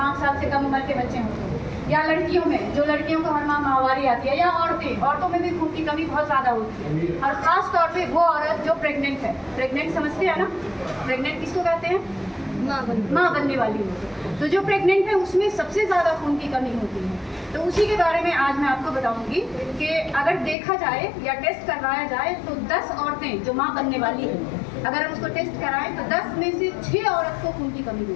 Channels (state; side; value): drops out; right; at 20.6 s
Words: साल से कम उम्र के बच्चे होते हैं, या लड़कियों में, जो लड़कियों को हर माह माहवारी आती है, या औरतों में भी खून की कमी बहुत ज़्यादा होती है। और ख़ास तौर पे वो औरत जो प्रेग्नेंट है, प्रेग्नेंट समझते हैं ना, प्रेग्नेंट किसको कहते हैं? माँ बनने वाली हो। तो जो प्रेग्नेंट है उसमें सबसे ज़्यादा खून की कमी होती है। तो उसी के बारे में आज मैं आपको बताऊंगी कि अगर देखा जाए या टेस्ट करवाया जाए तो 10 औरतें जो माँ बनने वाली हैं, अगर हम उसको टेस्ट कराएं तो 10 में से 6 औरत को खून की कमी